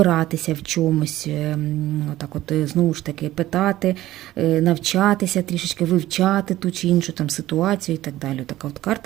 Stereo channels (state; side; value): quieter; left; 15.2 dB